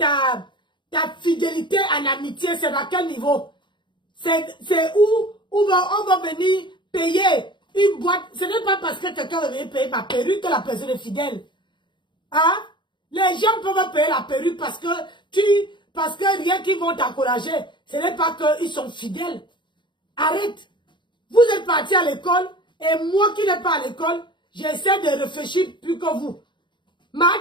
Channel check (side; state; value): right; late; 0.23 ms